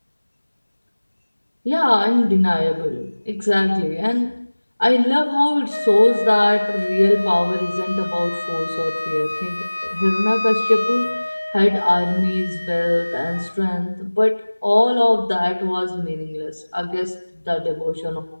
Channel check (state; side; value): inverted; both; correlation -1.00